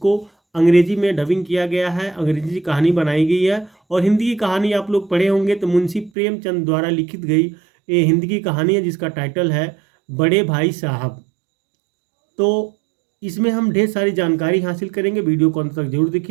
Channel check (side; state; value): left; drops out; at 6.1 s